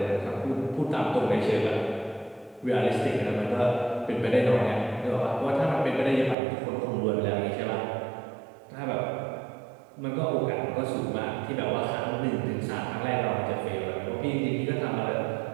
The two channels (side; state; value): left; drops out; at 6.4 s